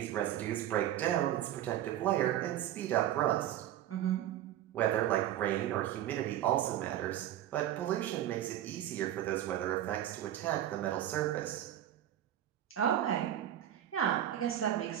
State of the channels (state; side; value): quieter; left; 12.0 dB